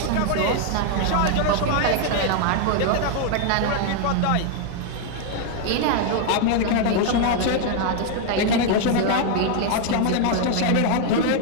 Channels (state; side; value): different; both; correlation 0.00